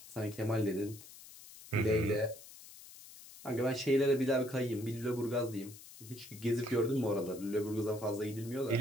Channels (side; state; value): left; noise; hiss, 18 dB below the sound